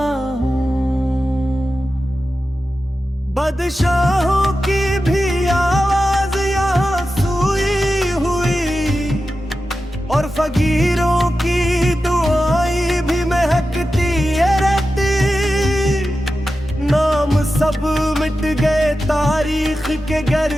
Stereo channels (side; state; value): both; normal; correlation 0.92